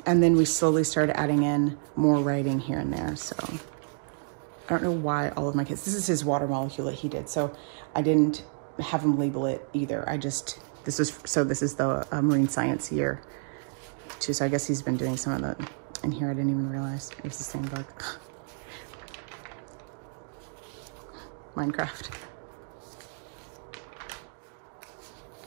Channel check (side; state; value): left; silent; 57 dB below the other